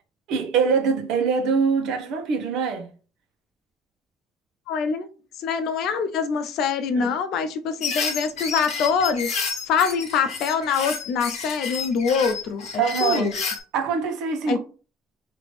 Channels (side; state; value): both; normal; correlation 0.34